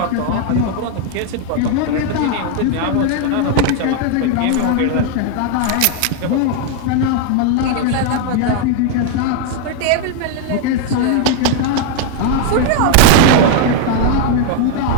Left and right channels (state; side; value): different; both; correlation 0.00